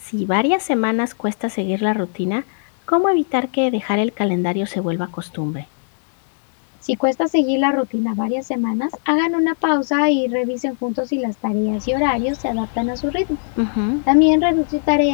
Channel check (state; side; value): silent; right; digital silence